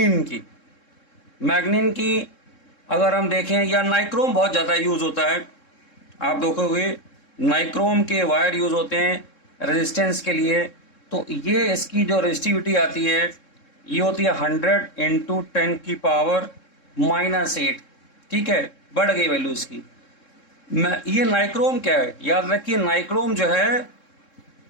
की अगर हम देखें, या नाइक्रोम बहुत ज़्यादा यूज होता है, आप देखोगे नाइक्रोम के वायर यूज होते हैं रेजिस्टेंस के लिए, तो ये इसकी जो रेजिस्टिविटी आती है ये होती है 100 इंटू 10 की पावर -8। ठीक है, बढ़ गई वैल्यू इसकी। ये नाइक्रोम क्या है, याद रखिए नाइक्रोम जो है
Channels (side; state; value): right; late; 3.7 ms